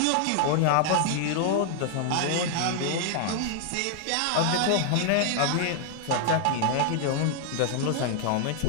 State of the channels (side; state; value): both; different; correlation 0.00